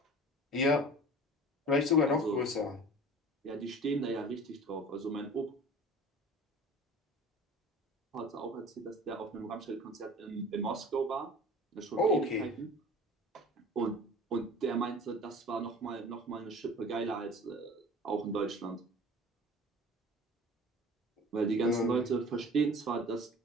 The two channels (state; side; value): normal; both; correlation 0.42